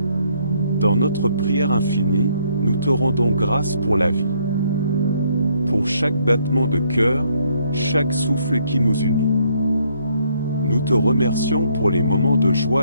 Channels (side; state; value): both; inverted; correlation -0.68